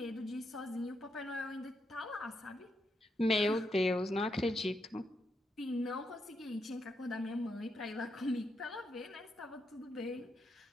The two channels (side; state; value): both; normal; correlation 0.81